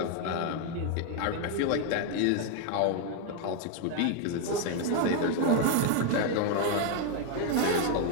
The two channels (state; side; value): different; both; correlation 0.00